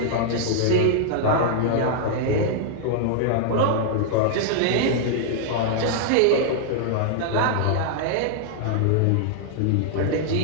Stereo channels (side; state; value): both; different; correlation -0.01